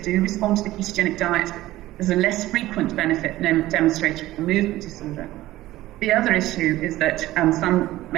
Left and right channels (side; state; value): left; quieter; 16.2 dB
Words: respond to the ketogenic diet. There's a less frequent benefit demonstrated for movement disorder. The other issue is that some